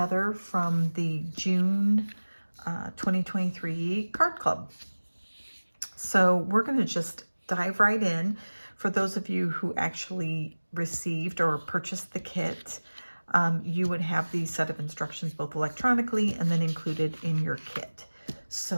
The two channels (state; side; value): inverted; both; correlation -1.00